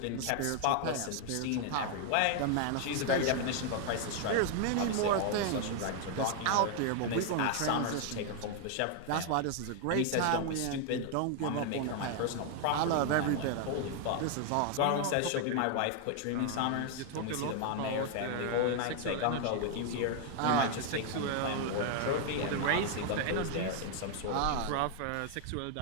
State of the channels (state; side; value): different; both; correlation 0.00